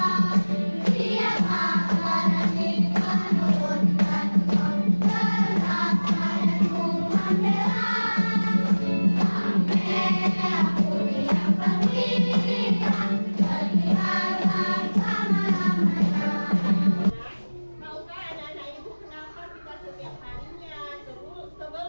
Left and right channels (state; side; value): inverted; both; correlation -1.00